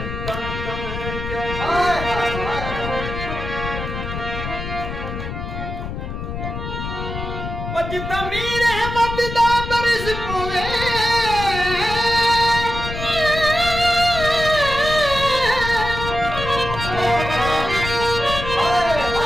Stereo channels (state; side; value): noise; left; rumble, 6 dB below the sound